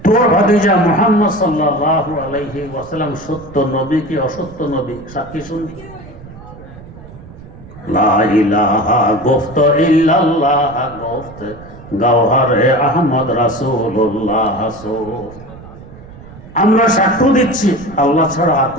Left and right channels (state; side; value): noise; right; rumble, 18 dB below the sound